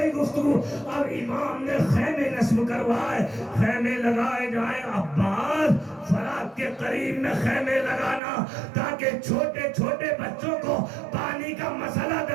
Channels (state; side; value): drops out; left; at 8.2 s